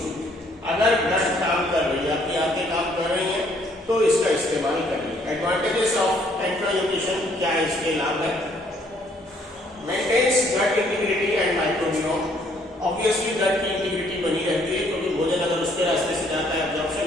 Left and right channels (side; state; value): both; normal; correlation 0.65